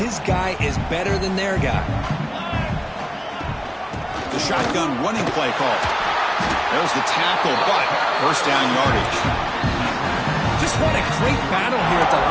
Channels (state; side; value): identical; both; correlation 1.00